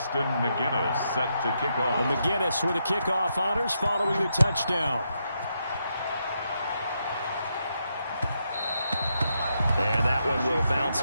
McGinnis set to kick off. And McGinnis with the kickoff honors following the touchdown. And that one will bounce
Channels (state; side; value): inverted; both; correlation -0.81